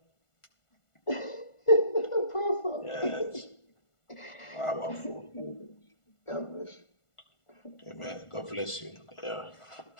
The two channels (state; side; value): late; right; 1.4 ms